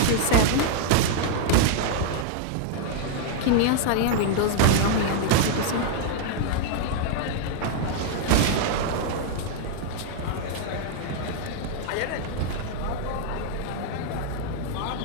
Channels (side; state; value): both; different; correlation -0.01